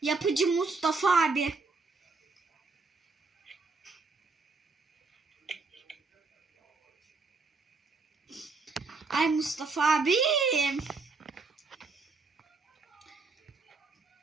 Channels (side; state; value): left; quieter; 4.1 dB